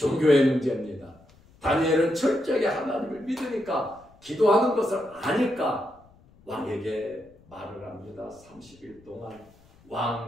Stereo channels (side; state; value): left; noise; rumble, 28 dB below the sound